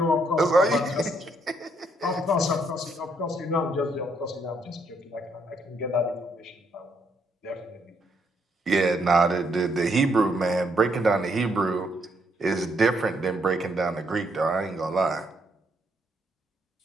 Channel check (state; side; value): normal; both; correlation 0.73